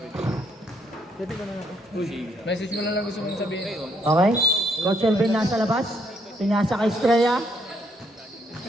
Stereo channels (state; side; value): normal; both; correlation 0.71